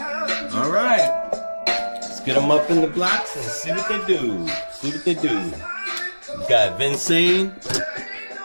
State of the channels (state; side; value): inverted; both; correlation -1.00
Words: Alright. Get them up in the blocks and see what they do. See what they do. We've got Vincent,